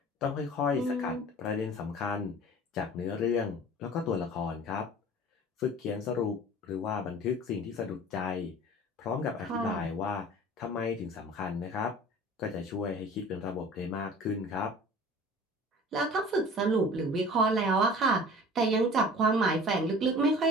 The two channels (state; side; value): normal; both; correlation 0.43